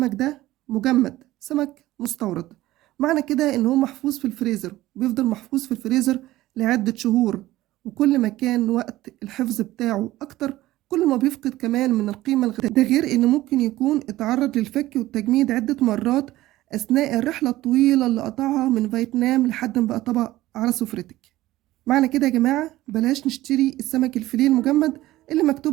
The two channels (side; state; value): left; quieter; 16.3 dB